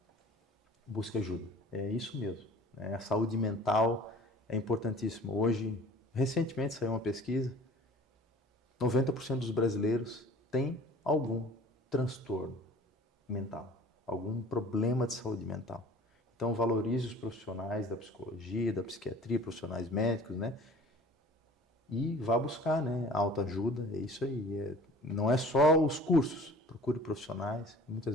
Busque ajuda. É isso mesmo, né? A saúde mental é importantíssima. Hoje, recentemente saiu uma pesquisa, 90% dos brasileiros têm algum transtorno mental, algum problema de saúde mental. Então, valorize os profissionais da psicologia, da psiquiatria, profissionais médicos, né? E vá buscar, né? Autoajuda, é isso aí. Não é só os cursos, procure profissionais.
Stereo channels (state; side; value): normal; both; correlation 0.46